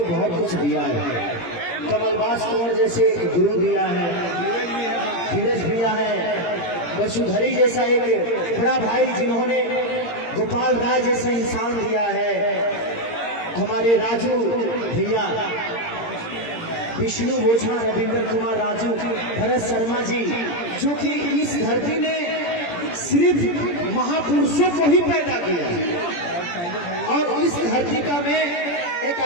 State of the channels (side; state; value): right; late; 17 ms